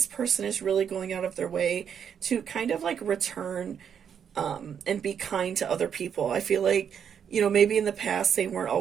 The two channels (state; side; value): quieter; left; 7.9 dB